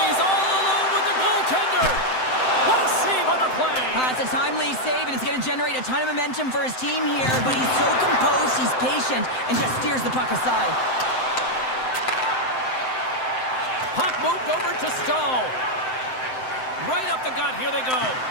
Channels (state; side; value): late; right; 7.8 ms